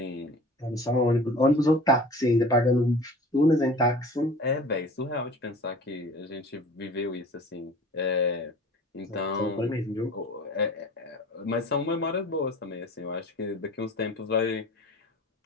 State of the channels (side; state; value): both; normal; correlation 0.42